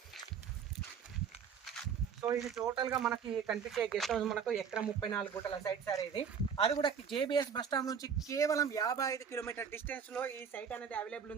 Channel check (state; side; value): quieter; left; 6.9 dB